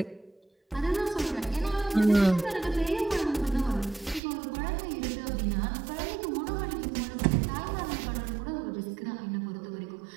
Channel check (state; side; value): drops out; left; at 4.2 s